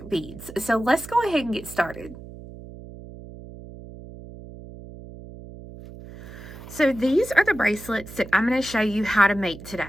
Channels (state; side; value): noise; right; hum, 15 dB below the sound